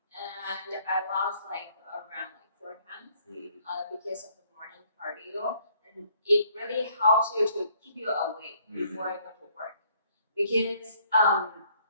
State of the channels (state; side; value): inverted; both; correlation -0.64